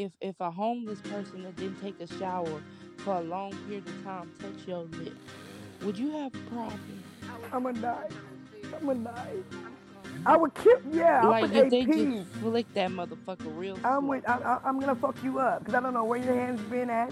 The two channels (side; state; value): both; identical; correlation 1.00